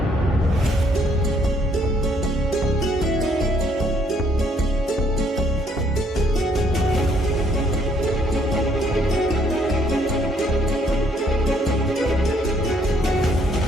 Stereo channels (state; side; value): normal; both; correlation 0.66